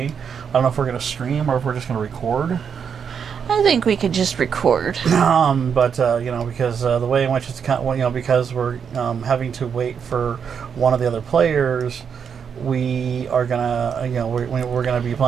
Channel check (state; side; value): quieter; left; 7.1 dB